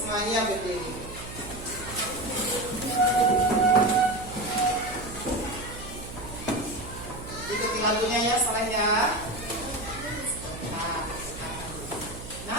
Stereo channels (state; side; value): noise; right; hum, 12 dB below the sound